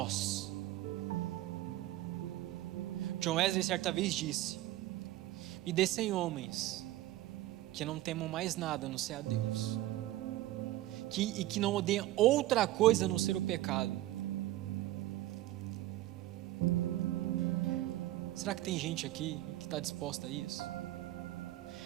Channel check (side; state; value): left; quieter; 15.6 dB